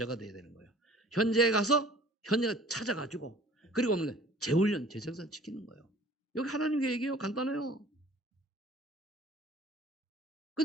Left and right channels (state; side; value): normal; both; correlation 0.49